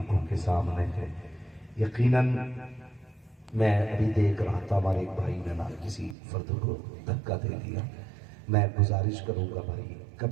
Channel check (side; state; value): left; drops out; at 6.2 s